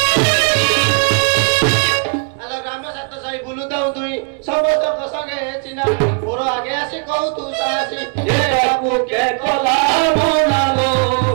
समस्त संगे चिना मोर आगे आसी कहू तू सासी ये बाबू के कला मनालो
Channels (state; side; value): quieter; left; 38.6 dB